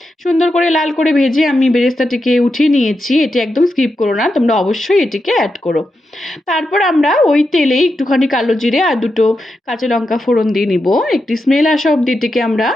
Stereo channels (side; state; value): both; normal; correlation 0.87